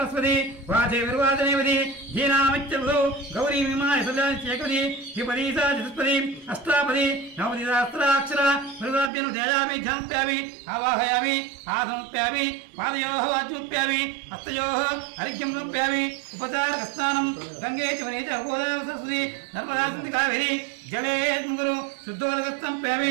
వాచే విర్వాచనేవతి ధీనామిత్యవదో గౌరీ విమాయ సదాచేకవతి ద్విపదీ సా చతుష్పదీ అష్టాపదీ నవపదీ సహస్రాక్షర మృగాభ్యను ధ్యాయామి ధ్యానప్యామి ఆవాహయామి ఆసనప్యామి పాదయోః వాచ్యముప్యామి హస్తయోః అర్ఘ్యం సమర్ప్యామి ఉపచారకస్నానం గంగే చ వనే చ గోదావరి సరస్వతి నర్మదా సింధు కావేరీ జలే గురు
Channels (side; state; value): left; drops out; at 9.1 s